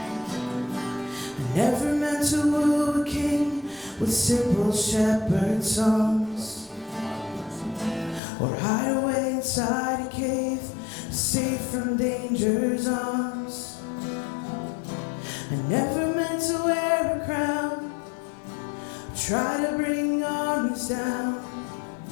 I never meant to woo a king with simple shepherd songs, or hide away inside a cave, safe from danger's arms. I never meant to wear a crown, try to bring armies down.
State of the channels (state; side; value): drops out; right; at 8.2 s